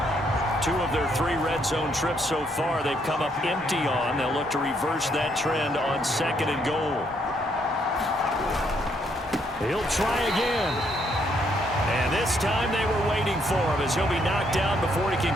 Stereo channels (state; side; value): normal; both; correlation 0.72